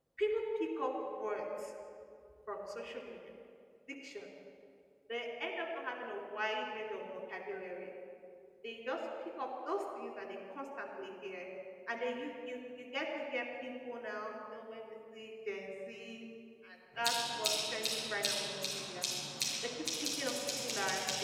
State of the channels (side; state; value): both; identical; correlation 1.00